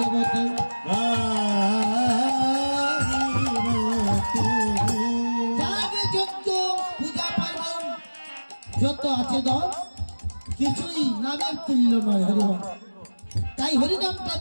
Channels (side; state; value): both; inverted; correlation -1.00